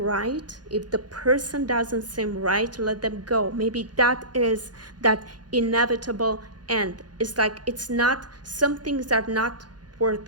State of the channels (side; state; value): left; late; 0.69 ms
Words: if the person doesn't seem right, let them go. Maybe that is that inevitable end. It's like some things are not